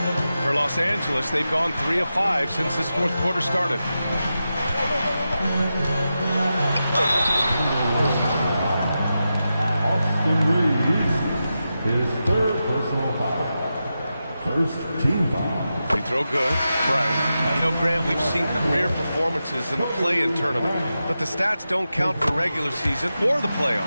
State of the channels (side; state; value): both; inverted; correlation -0.90